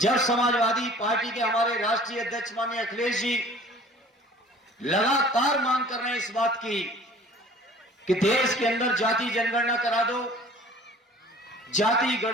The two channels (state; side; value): normal; both; correlation 0.49